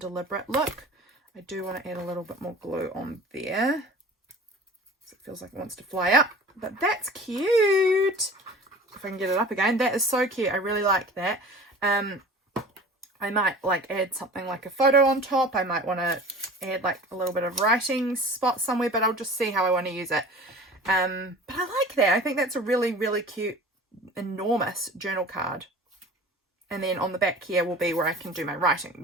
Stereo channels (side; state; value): both; normal; correlation 0.40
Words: look. I do want to add a little bit more glue on there. So it feels like it wants to fly up. But that's cute. If I can get it up again. That is so cute. I really like that. I might like add something like a photo on top. I might want to add like a little bit of writing spot somewhere, but I'll just see how I want to use it. But I like that. I think that's a really, really cute, enormous journal card. And then on the back here will be where I can do my writing.